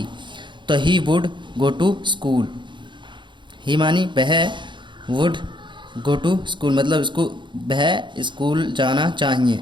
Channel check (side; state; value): left; late; 0.23 ms